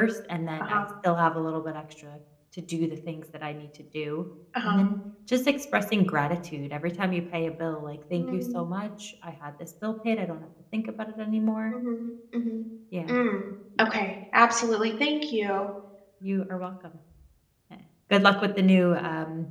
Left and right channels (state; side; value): identical; both; correlation 1.00